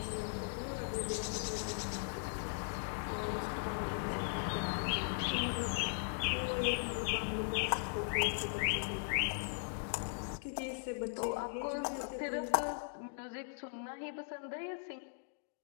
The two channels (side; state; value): right; silent; digital silence